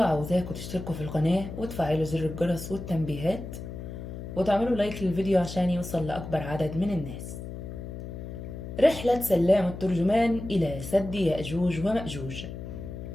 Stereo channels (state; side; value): noise; left; hum, 9 dB below the sound